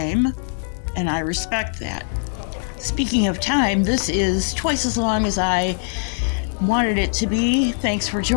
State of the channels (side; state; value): right; silent; digital silence